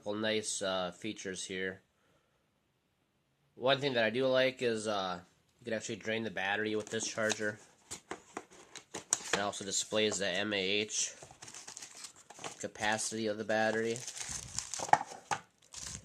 nice features here. One thing that I do like is you can actually drain the battery with this charger. It also displays the mAh capacity of the battery.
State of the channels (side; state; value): both; identical; correlation 1.00